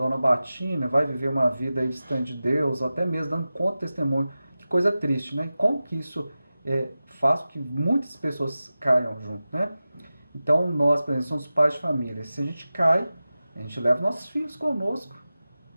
a batina, vai viver uma vida aí distante de Deus, ou até mesmo dando conta de testemunho. Que coisa triste, né? Como que isso faz com que muitas pessoas caiam junto, né? Então nós, por exemplo, somos pais de família. Se a gente cai, a gente leva nossos filhos conosco,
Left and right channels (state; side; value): inverted; both; correlation -0.95